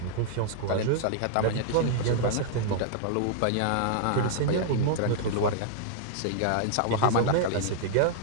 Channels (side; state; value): both; different; correlation -0.01